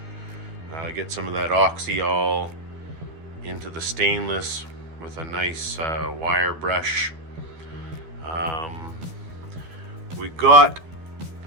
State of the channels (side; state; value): left; late; 12 ms